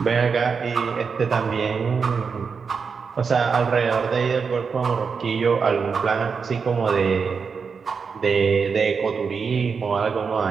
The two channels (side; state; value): left; quieter; 5.6 dB